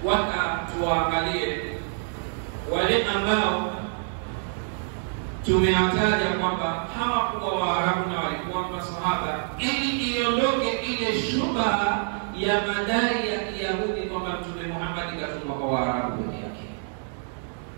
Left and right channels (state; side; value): silent; left; 57 dB below the other